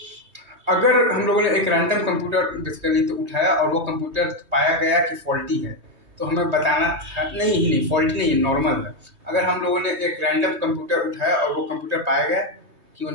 अगर हम लोगों ने एक रैंडम कंप्यूटर बेसिकली तो उठाया और वो कंप्यूटर पाया गया कि फॉल्टी है, तो हमें बताना था नहीं फॉल्टी नहीं है, नॉर्मल है। अगर हम लोगों ने एक रैंडम कंप्यूटर उठाया और वो कंप्यूटर पाया गया कि वो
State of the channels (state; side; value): late; left; 3.2 ms